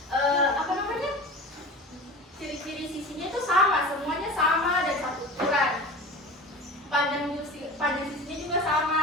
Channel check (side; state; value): both; normal; correlation 0.35